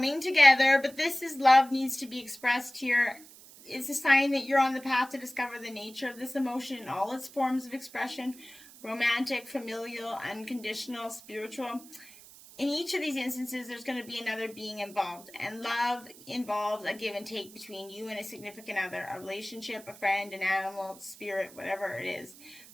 together, but this is love needs to be expressed here. It's a sign that you're on the path to discover the nature of this emotion in all its forms of expression: romantic, familial, unconditional, spiritual. In each of these instances, there's going to be another being involved, and love involves a give and take between you and a significant other, a relationship, a friend, an animal, spirit, whatever it is.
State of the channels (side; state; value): right; noise; hiss, 20 dB below the sound